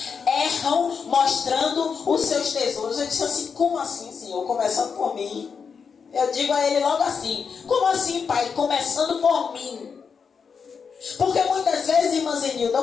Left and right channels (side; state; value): right; quieter; 6.0 dB